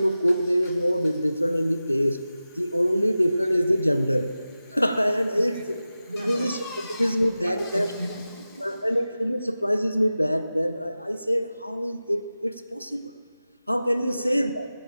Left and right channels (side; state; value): both; inverted; correlation -0.94